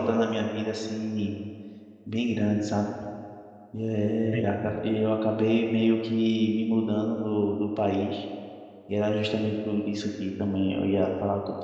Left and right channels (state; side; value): identical; both; correlation 1.00